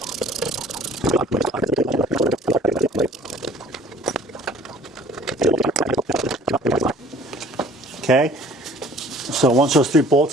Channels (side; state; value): both; normal; correlation 0.52